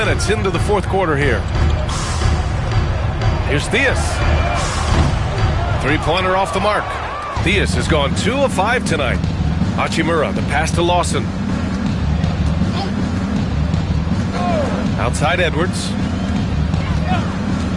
into the fourth quarter here. Here's Theus. Three-pointer off the mark. Theus has gone 2 of 5 tonight. Hachimura, the pass to Lawson. Outside Edwards.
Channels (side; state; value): both; identical; correlation 1.00